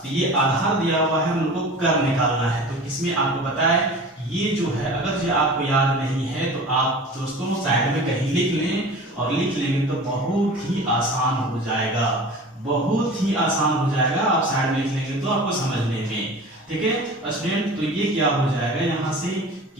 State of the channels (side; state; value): both; normal; correlation 0.38